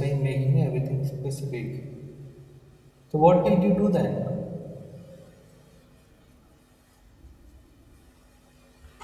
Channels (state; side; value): identical; both; correlation 1.00